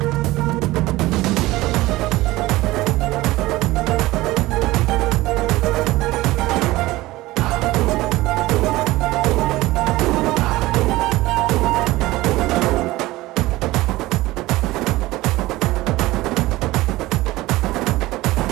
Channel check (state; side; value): quieter; left; 18.6 dB